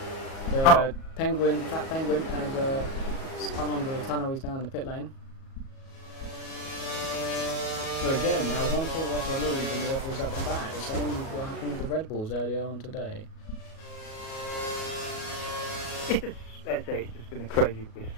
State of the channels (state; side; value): late; right; 37 ms